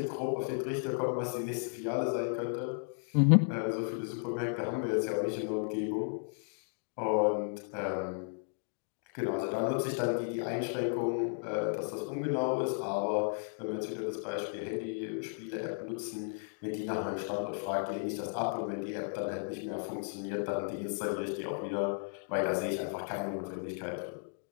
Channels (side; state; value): right; silent; digital silence